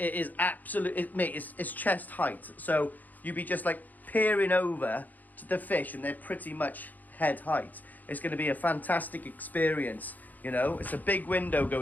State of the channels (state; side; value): late; right; 0.082 ms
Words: is it's chest height, so you'd be just like peering over to the fish and they're pretty much head height. It's going to be a fantastic experience, you know. It's a big window